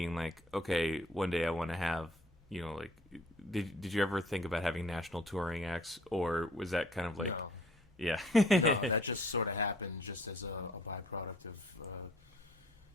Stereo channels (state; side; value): normal; both; correlation 0.56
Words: like, okay, one day I want to have, like, did you ever think about having national touring acts, or was that kind of like, no. Yeah, No, that just sort of happened just as a byproduct of